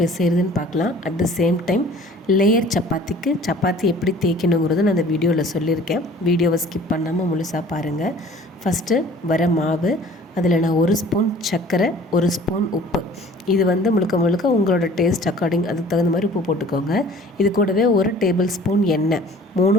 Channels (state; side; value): normal; both; correlation 0.50